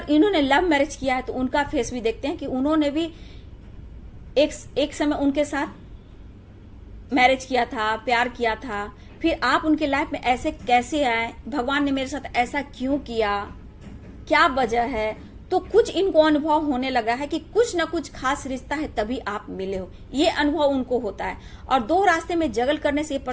इन्होंने लव मैरिज किया है तो उनका फेस भी देखते हैं कि उन्होंने भी एक समय उनके साथ मैरिज किया था, प्यार किया था, फिर आप उनके लाइफ में ऐसे कैसे आए, भगवान ने मेरे साथ ऐसा क्यों किया, क्या वजह है। तो कुछ इनको अनुभव होने लगा है कि कुछ ना कुछ खास रिश्ता है तभी आप मिले हो, ये अनुभव उनको होता है। और 2 रास्ते में जगल करने से ये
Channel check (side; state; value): both; identical; correlation 1.00